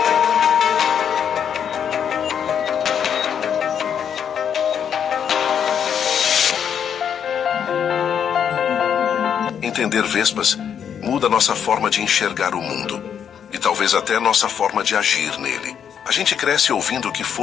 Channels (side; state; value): right; quieter; 8.2 dB